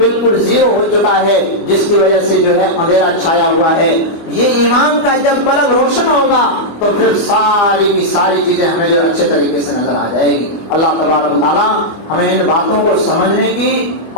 0 ہو چکا ہے، جس کی وجہ سے جو ہے اندھیرا چھایا ہوا ہے۔ یہ ایمان کا جب بلب روشن ہوگا تو پھر ساری کی ساری چیزیں ہمیں جو اچھے طریقے سے نظر آ جائے گی۔ اللہ تبارک و تعالیٰ ہمیں ان باتوں کو سمجھنے کی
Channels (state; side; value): late; right; 25 ms